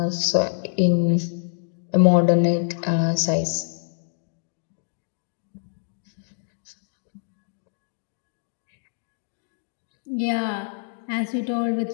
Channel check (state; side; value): silent; right; digital silence